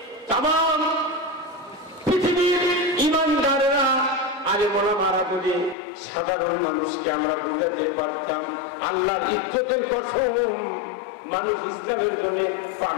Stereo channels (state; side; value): drops out; right; at 5.8 s